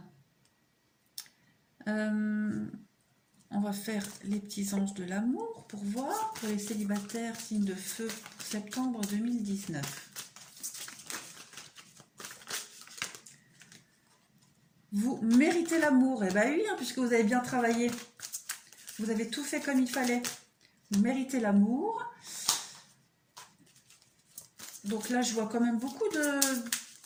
On va faire les petits anges de l'amour pour voir. Pour les célibataires, signe de feu pour septembre 2019. Vous méritez l'amour. Eh bien oui, hein, puisque vous avez bien travaillé. Vous avez tout fait comme il fallait. Vous méritez l'amour. Donc là, je vois quand même beaucoup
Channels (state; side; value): identical; both; correlation 1.00